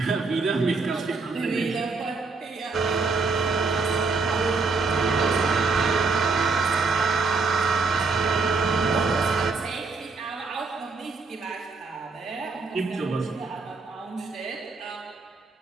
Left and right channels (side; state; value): left; quieter; 4.2 dB